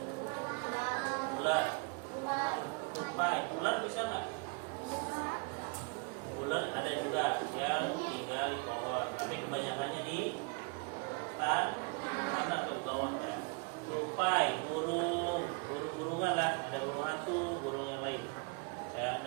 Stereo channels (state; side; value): quieter; left; 32.4 dB